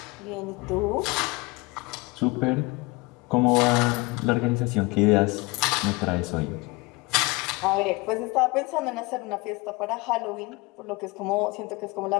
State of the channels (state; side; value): quieter; right; 24.2 dB